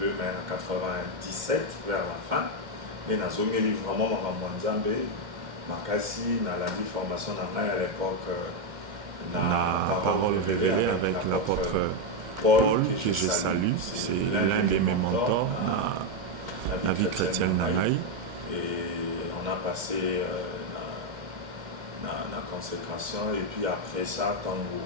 mais en 97, vers la fin. Mais dans le livre vraiment Mwanzambe, Makasi, dans la formation à l'époque, la parole révélée avec l'apôtre Paul, que je salue, c'est l'un de mes mentors dans la vie chrétienne Nanaï. Et on a passé la consécration, et puis après ça, tant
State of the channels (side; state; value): left; late; 2.1 ms